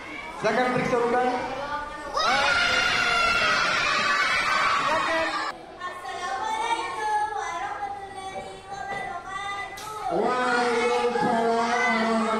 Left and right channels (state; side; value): identical; both; correlation 1.00